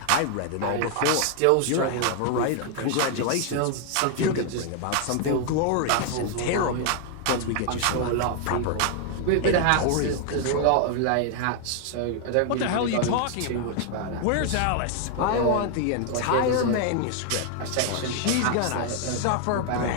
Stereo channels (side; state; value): both; different; correlation 0.00